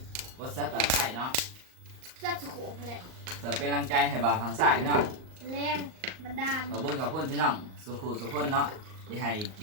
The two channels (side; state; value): left; late; 38 ms